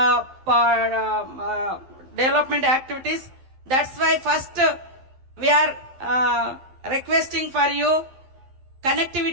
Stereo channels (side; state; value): left; late; 11 ms